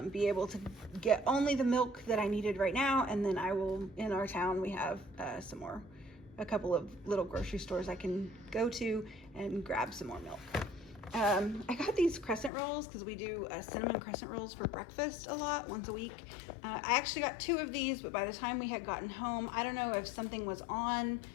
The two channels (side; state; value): right; drops out; at 12.5 s